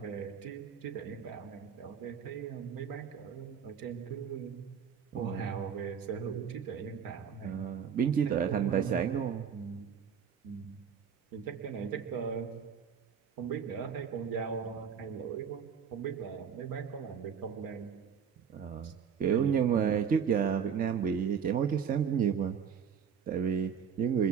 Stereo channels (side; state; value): left; quieter; 7.4 dB